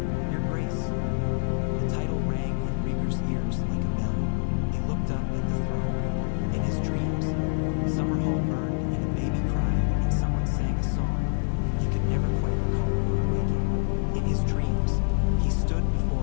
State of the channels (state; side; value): silent; right; 61 dB below the other